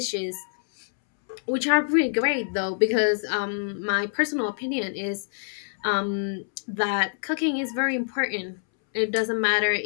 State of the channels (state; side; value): silent; right; 61 dB below the other